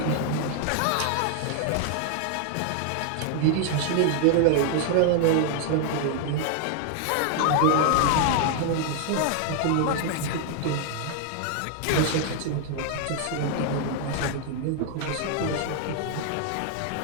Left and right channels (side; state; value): both; different; correlation 0.00